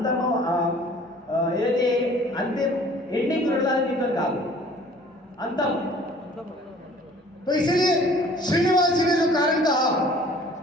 ఏదైతే అంతిమ ఎండింగ్ చూడాలి మీతో కాదు, అంతం. तो इसीलिए श्रीनिवास जी ने जो कारण कहा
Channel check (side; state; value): both; normal; correlation 0.51